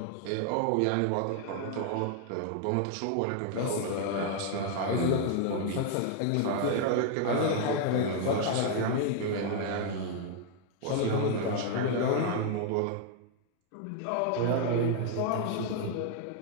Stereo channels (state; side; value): different; both; correlation 0.00